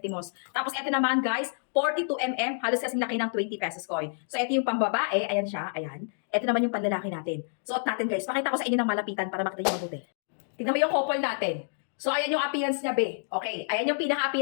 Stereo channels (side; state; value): right; silent; digital silence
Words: Tapos, ito naman guys, 42 mm, halos kasing laki ng 20 pesos coin. So, ito yung pambabae. Ayan siya, ayan. Ito naman yung panlalaki natin. Suot natin guys. Pakita ko sa inyo ng malapitan para makita nyo mabuti. Tignan mo yung couple natin. So, ayan yung appearance niya, be. Okay, ayan yung